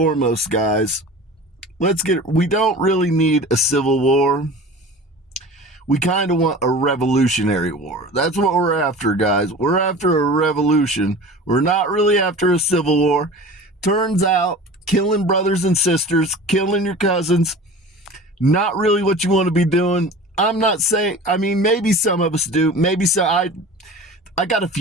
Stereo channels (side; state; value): both; normal; correlation 0.38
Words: guys, we don't really need a civil war. We kind of want a revolutionary war. That's what we're after, guys. We're after a revolution. We're not really after a civil war. Turns out, killing brothers and sisters, killing your cousins, not really what you want to be doing. I'm not saying, I mean, maybe some of us do. Maybe so. I got a